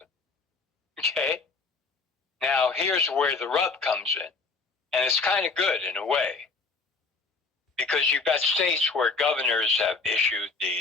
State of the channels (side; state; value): right; quieter; 4.3 dB